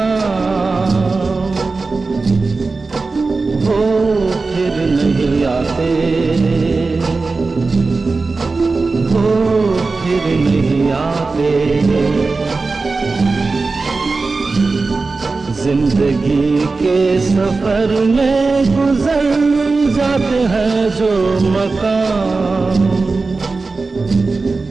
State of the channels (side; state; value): left; quieter; 3.9 dB